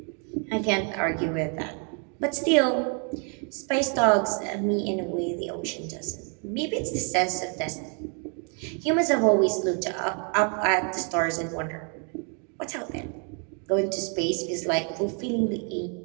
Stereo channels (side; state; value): left; quieter; 39.5 dB